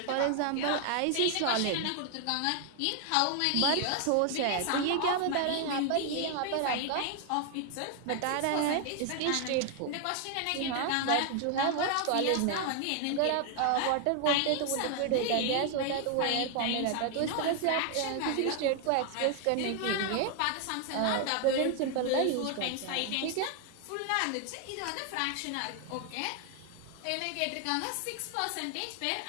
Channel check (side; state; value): both; different; correlation 0.00